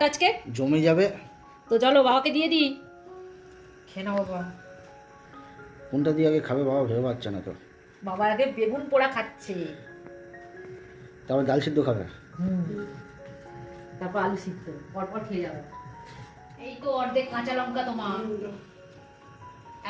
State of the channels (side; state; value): both; identical; correlation 1.00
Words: আজকে? জমে যাবে। তো চলো বাবাকে দিয়ে দিই, খেয়ে নাও বাবা। কোনটা দিয়ে আগে খাবে বাবা ভেবে পাচ্ছে না তো। বাবা আগে বেগুন পোড়া খাচ্ছে, তারপর ডাল সিদ্ধ খাবে, তারপর আলু সিদ্ধ, পরপর খেয়ে যাবে। এই তো অর্ধেক কাঁচা লঙ্কা তোমার।